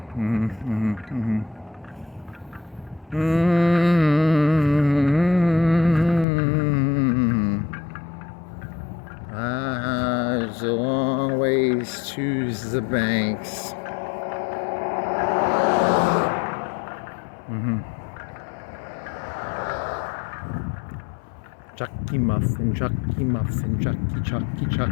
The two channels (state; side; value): drops out; right; at 6.2 s